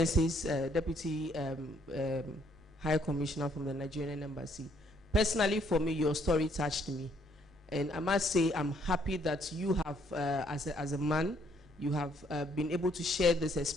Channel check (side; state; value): both; normal; correlation 0.67